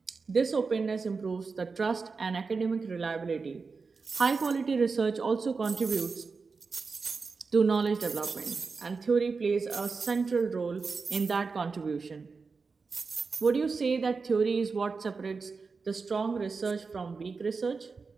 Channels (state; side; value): quieter; left; 4.6 dB